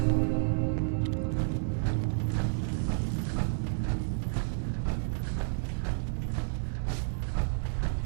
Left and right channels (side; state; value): left; silent; digital silence